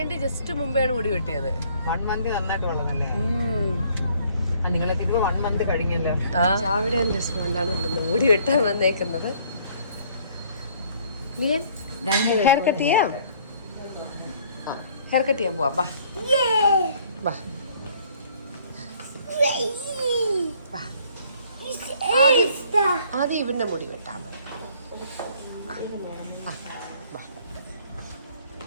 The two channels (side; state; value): both; inverted; correlation -0.60